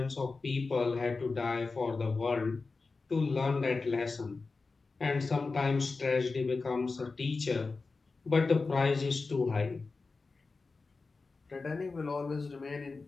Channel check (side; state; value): right; quieter; 4.0 dB